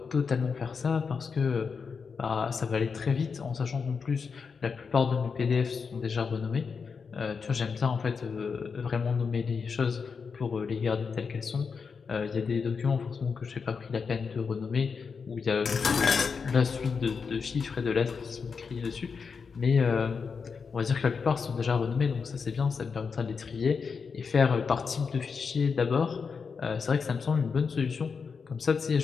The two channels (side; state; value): right; quieter; 5.5 dB